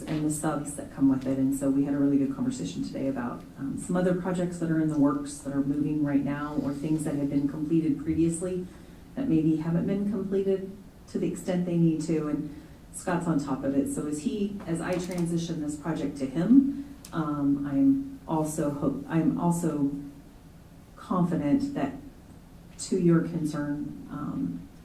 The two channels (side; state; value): both; identical; correlation 1.00